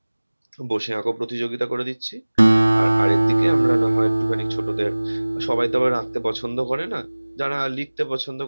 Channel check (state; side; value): inverted; both; correlation -1.00